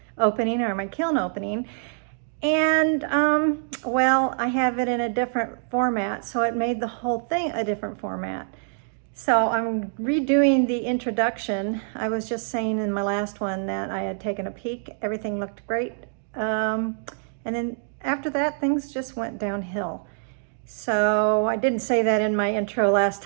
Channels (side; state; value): left; silent; digital silence